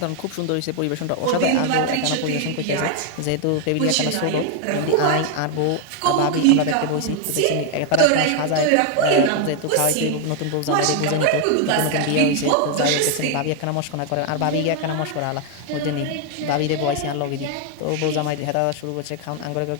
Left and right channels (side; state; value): both; different; correlation 0.01